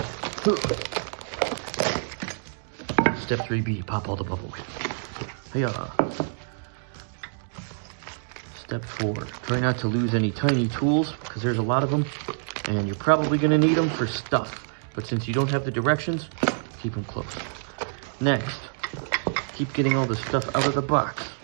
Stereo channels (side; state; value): left; silent; digital silence